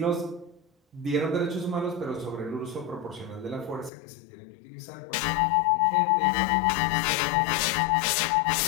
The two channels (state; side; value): drops out; right; at 3.9 s